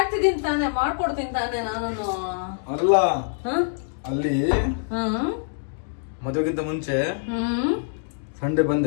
ತಾನೆ, ಮಾಡ್ಕೊಡ್ತೀನಿ ತಾನೆ ನಾನು. ಅಲ್ಲ ಅಲ್ಲಿ ಮದುವೆಗಿಂತ ಮುಂಚೆ ಸಂಡೆ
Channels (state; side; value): silent; right; digital silence